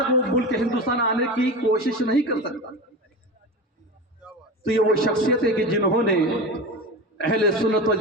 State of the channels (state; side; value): normal; both; correlation 0.26